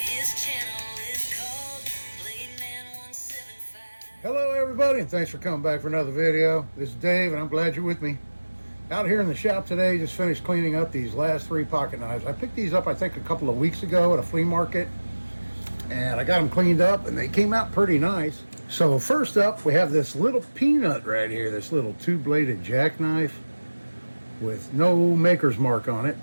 Hello everybody, and thanks for coming back for another video. This is Dave and I'm glad you're with me. Out here in the shop today, just finished cleaning up these last 3 pocket knives. I picked these up I think a couple of weeks ago at a flea market, and I got them cleaned up and they came out pretty nice. So first up we have this little peanut right here, this little 2-bladed jackknife with no maker's mark on it.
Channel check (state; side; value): inverted; both; correlation -1.00